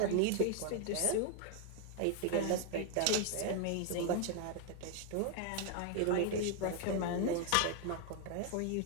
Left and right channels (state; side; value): different; both; correlation 0.01